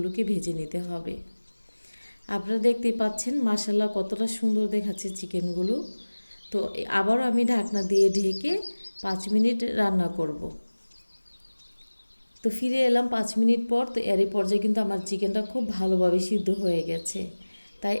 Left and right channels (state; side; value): inverted; both; correlation -1.00